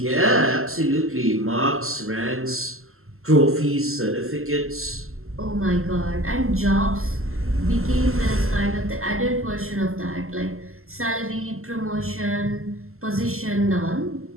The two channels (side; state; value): left; late; 0.62 ms